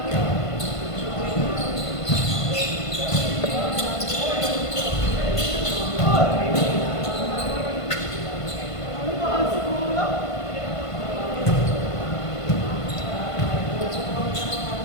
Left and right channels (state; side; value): late; right; 1.5 ms